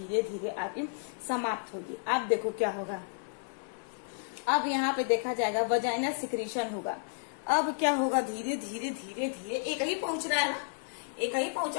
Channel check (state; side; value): silent; right; digital silence